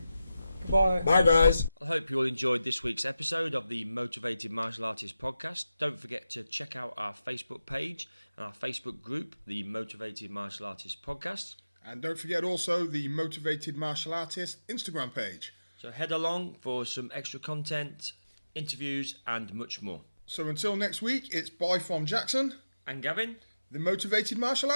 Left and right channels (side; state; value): both; inverted; correlation -0.93